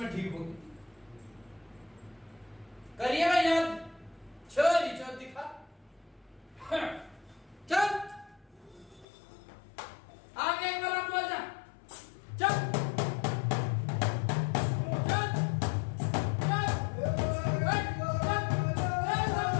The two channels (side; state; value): right; drops out; at 9.1 s